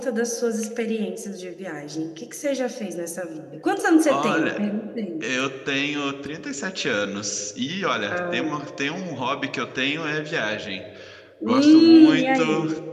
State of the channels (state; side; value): identical; both; correlation 1.00